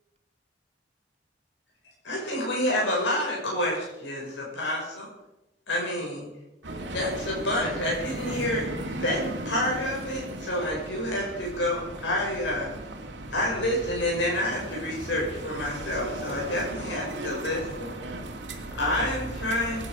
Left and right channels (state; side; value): normal; both; correlation 0.09